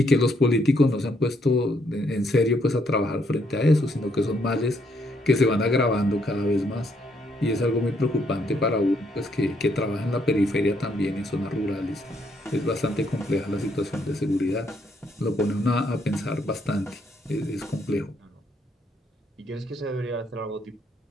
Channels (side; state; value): both; normal; correlation 0.72